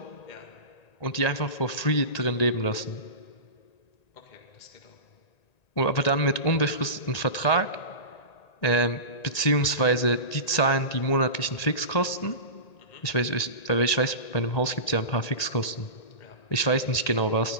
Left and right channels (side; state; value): right; late; 1.9 ms